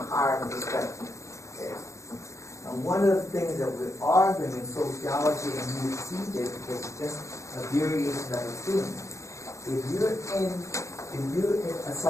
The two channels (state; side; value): late; right; 0.15 ms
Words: higher perspective. Okay? And one of the things that we're arguing in sociology, and you see this because it's just a variation of a theme. If you're a